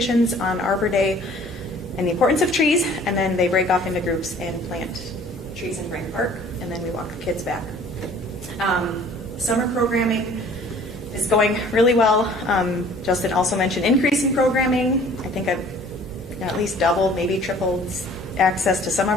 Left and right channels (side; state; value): both; normal; correlation 0.52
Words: on Arbor Day and the importance of trees, and then they break off into groups and plant trees in Brain Park, and then we walk the kids back. Summer programming is going really well. Justin also mentioned increasing programming. I think I've at least doubled, maybe tripled access to some